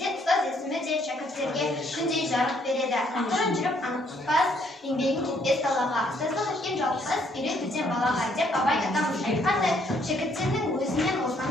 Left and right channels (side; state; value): both; normal; correlation 0.68